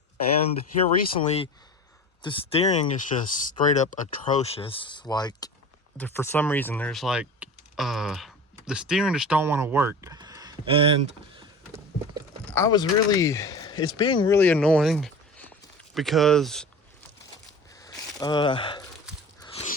And here recently, the steering is just straight up atrocious. Like, for some reason, there's like the steering just don't want to work. And it's being really annoying because a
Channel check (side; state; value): both; normal; correlation 0.35